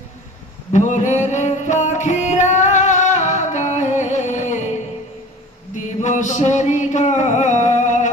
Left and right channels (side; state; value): both; normal; correlation 0.40